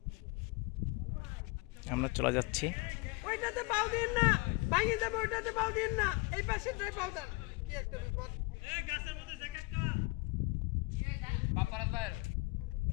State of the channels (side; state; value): right; quieter; 25.4 dB